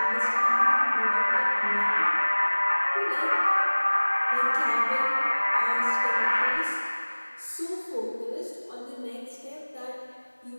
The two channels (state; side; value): inverted; both; correlation -1.00